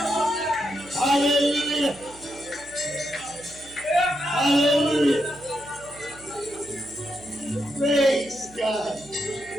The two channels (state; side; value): noise; right; hum, 22 dB below the sound